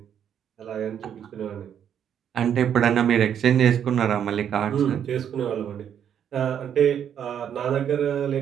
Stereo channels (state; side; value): quieter; left; 9.0 dB